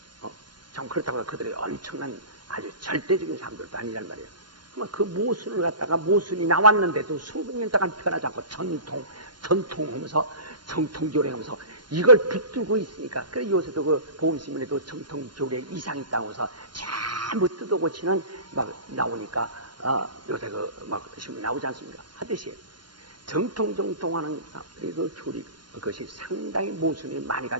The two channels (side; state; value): left; late; 0.71 ms